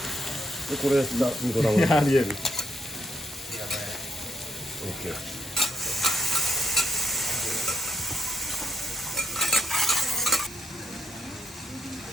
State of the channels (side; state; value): both; normal; correlation 0.78